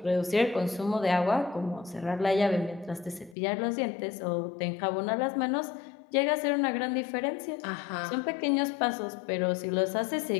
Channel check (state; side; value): drops out; right; at 3.4 s